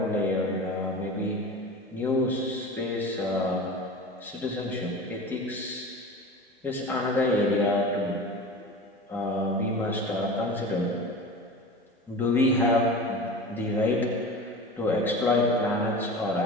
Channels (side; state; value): both; normal; correlation 0.33